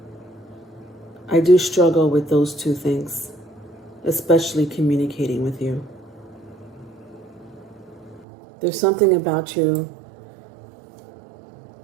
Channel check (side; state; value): left; drops out; at 8.2 s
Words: I do struggle with those two things, especially communicating with you. There's something about you